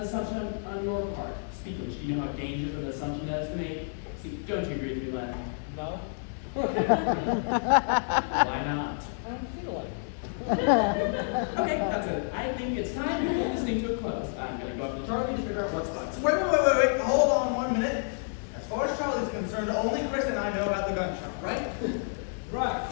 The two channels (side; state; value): right; silent; digital silence